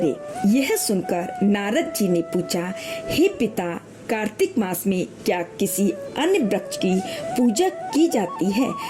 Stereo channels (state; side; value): identical; both; correlation 1.00